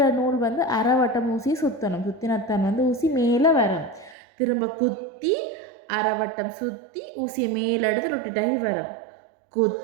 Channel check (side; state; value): left; drops out; at 4.2 s